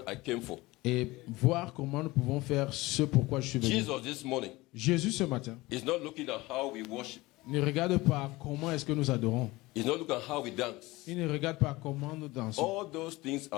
I came for. et voir comment nous pouvons faire ce pourquoi je suis venu. Jesus this morning Jésus ce matin is not looking at how we worship. ne regarde pas comment est-ce que nous adorons. He's not looking at how we dance. Il ne regarde pas comment nous dansons. All those things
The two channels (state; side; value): quieter; right; 20.7 dB